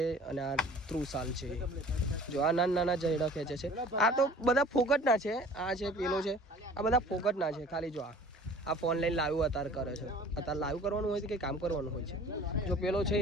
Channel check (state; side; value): normal; both; correlation 0.47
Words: અને આ ત્રુસાલ છે. જો આ નાના નાના જયડા ખેંચે છે. આ તો બધા ફોકટના છે. આ છે, પેલો છે, આ બધા ફોકટના છે. ખાલી જો આ ફોન લઈને લાઈવ અત્યારે કરે છે. અત્યારે લાઈવ કરવાનું હોય છે કે કામ કરવાનું હોય છે. જો પેલો છે